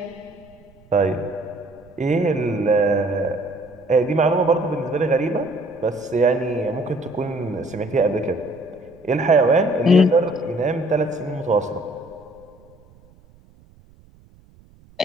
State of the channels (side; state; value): right; noise; rumble, 28 dB below the sound